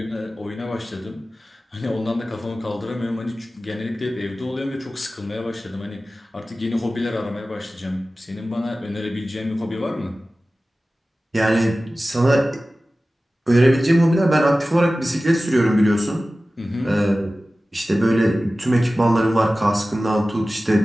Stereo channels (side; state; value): both; normal; correlation 0.96